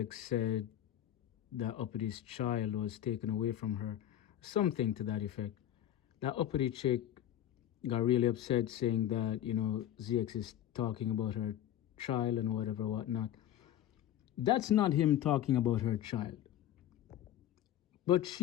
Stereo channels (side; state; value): right; quieter; 11.7 dB